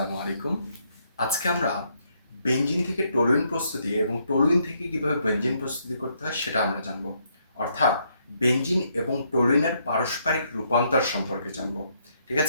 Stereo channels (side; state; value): both; inverted; correlation -0.73